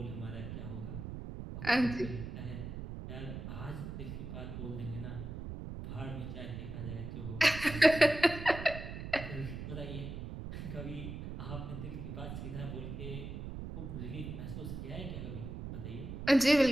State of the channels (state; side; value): noise; right; rumble, 7 dB below the sound